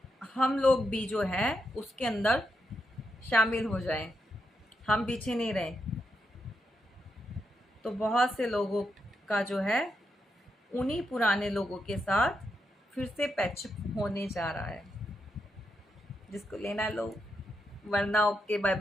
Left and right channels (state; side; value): normal; both; correlation 0.84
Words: हम लोग भी जो है उसके अंदर शामिल हो जाएं, हम पीछे नहीं रहें। तो बहुत से लोगों का जो है उन्हीं पुराने लोगों के साथ फिर से पैचअप होने जा रहा है। जिसको लेना लो, वरना ओके बाय